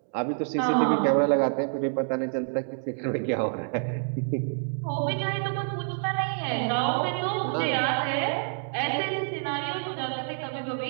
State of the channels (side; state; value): left; silent; 60 dB below the other